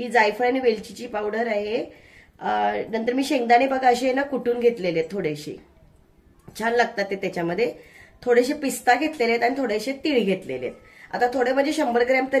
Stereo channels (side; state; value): both; identical; correlation 1.00